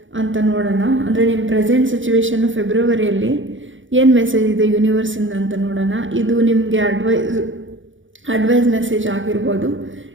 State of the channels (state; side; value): late; left; 0.56 ms